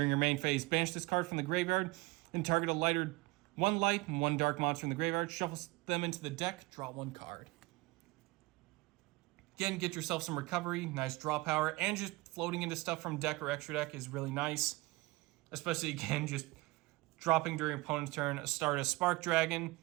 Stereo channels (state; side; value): quieter; left; 22.6 dB